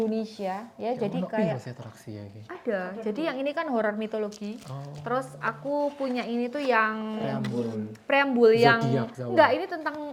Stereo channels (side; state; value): both; identical; correlation 1.00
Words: ya. Jadi kayak atraksi ya iki. ada. Jadi yang ini kan horor mitologi. Oh. Terus aku punya ini tuh yang Preambul. preambul yang Zodiak, Jawa. enggak, ini tentang